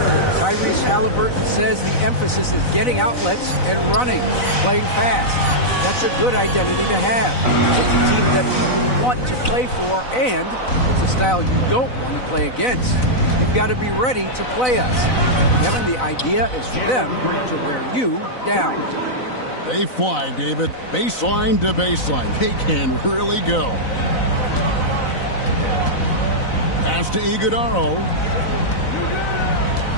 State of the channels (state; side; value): late; right; 4.0 ms